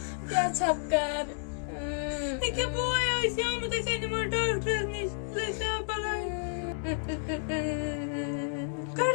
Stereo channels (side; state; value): right; silent; digital silence